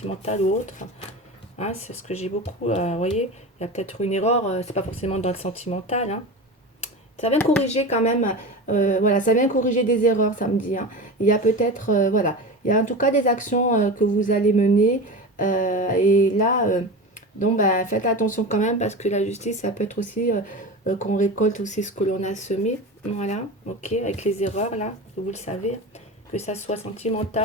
ou autre. Hein, c'est ce que j'ai beaucoup. Vous voyez, il y a peut-être une erreur, c'est pas forcément dans le sentimental. Hein. Ça vient corriger quand même. Voilà, ça vient corriger des erreurs, ça me dit. Hein. Il y a peut-être, voilà, il y a en tout cas des actions que vous allez mener. Et là, donc, ben, faites attention quand même parce que la justice, ça peut être aussi qu'on récolte aussi ce que l'on a semé. Voilà, ok, avec les erreurs là, vous le savez, que ça soit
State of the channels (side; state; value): both; normal; correlation 0.28